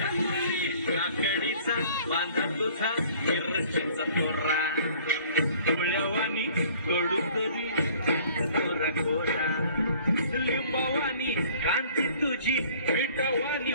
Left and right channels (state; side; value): inverted; both; correlation -0.53